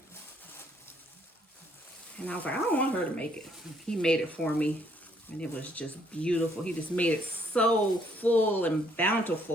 And I was like, I don't want her to make it. He made it for me, and it was just beautiful. He just made it so full and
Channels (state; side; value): normal; both; correlation 0.67